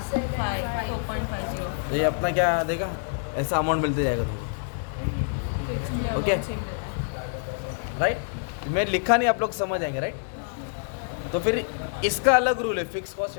ये अपना क्या देगा ऐसा अमाउंट मिलते जाएगा तुमको ओके राइट मैं लिखा नहीं आप लोग समझ आएंगे राइट तो फिर इसका अलग रूल है फिक्स कॉस्ट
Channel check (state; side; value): silent; right; 60 dB below the other